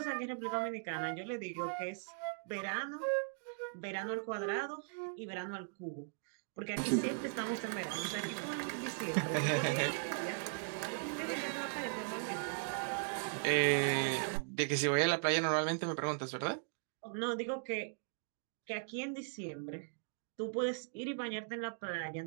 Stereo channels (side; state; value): left; silent; digital silence